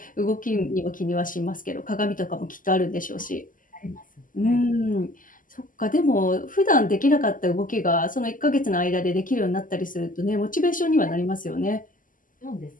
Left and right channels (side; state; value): right; late; 0.39 ms